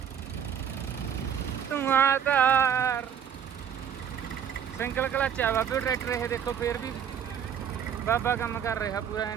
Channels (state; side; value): quieter; left; 8.5 dB